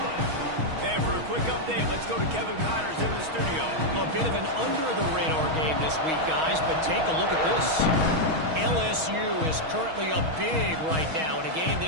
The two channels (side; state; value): left; late; 6.3 ms